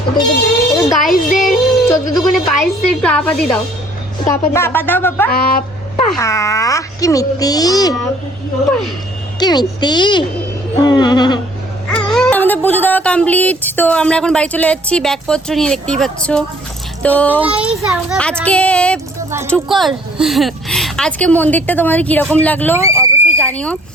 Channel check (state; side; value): normal; both; correlation 0.57